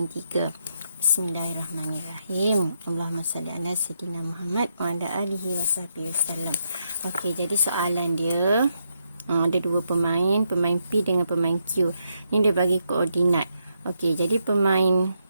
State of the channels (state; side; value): inverted; both; correlation -0.81